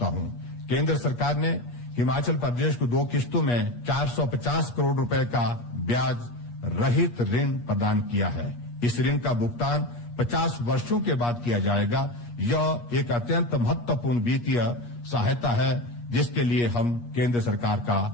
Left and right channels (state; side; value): late; right; 8.4 ms